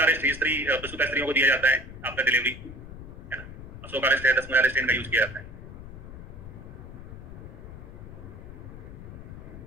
रिष्ट स्त्री प्रसूता स्त्रियों को दिया जाता है आफ्टर डिलीवरी, है ना, अशोक रिष्ट है, 10 मूला रिष्ट इनका यूज किया जाता है।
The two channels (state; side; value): noise; left; rumble, 13 dB below the sound